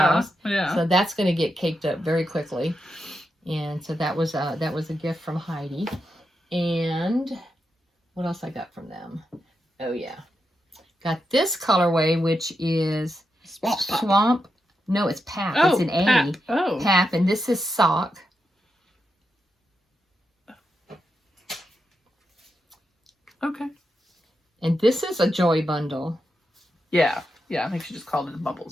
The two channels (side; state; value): both; normal; correlation 0.86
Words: Yeah. So that's going to get caked up very quickly. And so that was a gift from Heidi. And what else I got from them? Oh yeah, got this colorway, which is Swamp. No, it's Pap. Oh, it's an A. Pap. Oh. Pap, and this is Sock. Okay. And this is a Joy bundle. Yeah. Yeah, I think she just called it a